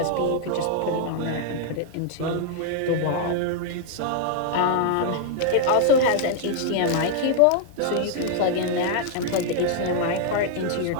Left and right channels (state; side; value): different; both; correlation 0.00